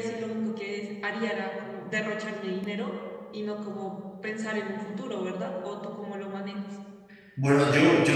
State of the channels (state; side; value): identical; both; correlation 1.00